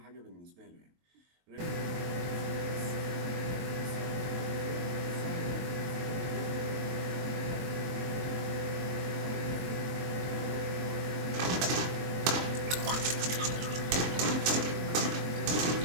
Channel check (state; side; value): late; left; 23 ms